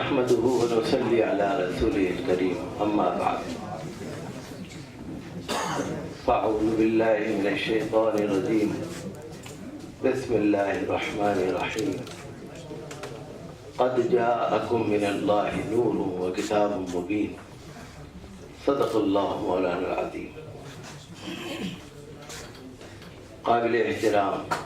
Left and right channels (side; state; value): both; identical; correlation 1.00